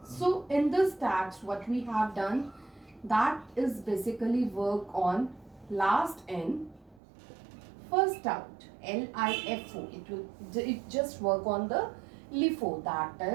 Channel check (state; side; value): drops out; left; at 7.0 s